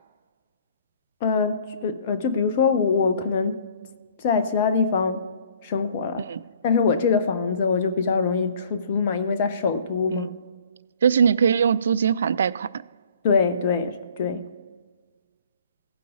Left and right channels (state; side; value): inverted; both; correlation -0.55